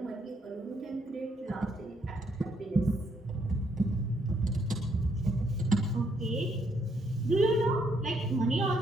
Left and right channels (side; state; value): both; normal; correlation 0.73